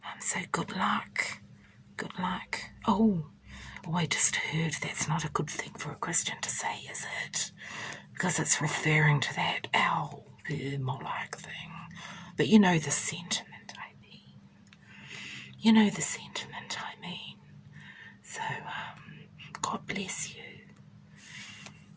So good luck. Good luck. Oh, I just heard that's not a good thing for a Christian to say, is it? Because it's referring to that owl, Moloch thing. But you know the sentiment I mean. You know the sentiment I mean. So, God bless you.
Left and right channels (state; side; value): identical; both; correlation 1.00